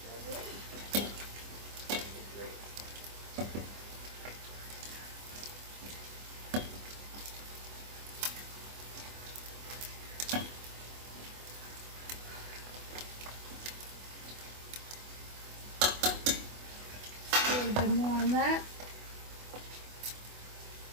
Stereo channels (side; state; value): left; late; 24 ms